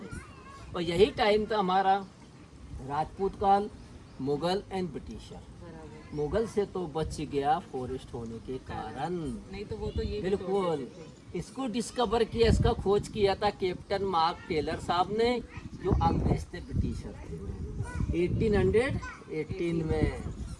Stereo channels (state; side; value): identical; both; correlation 1.00